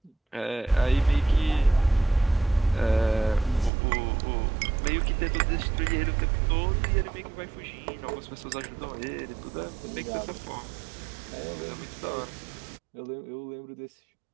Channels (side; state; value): left; drops out; at 3.7 s